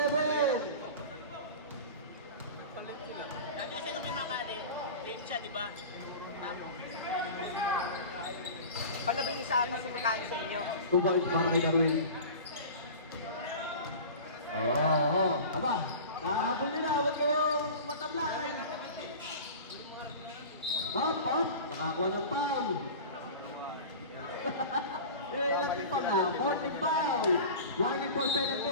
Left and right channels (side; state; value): both; inverted; correlation -0.35